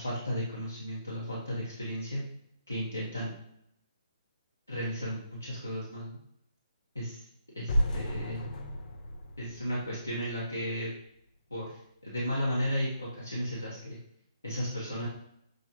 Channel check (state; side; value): inverted; both; correlation -0.77